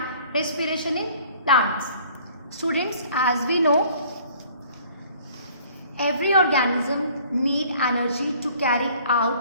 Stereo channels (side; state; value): both; inverted; correlation -0.54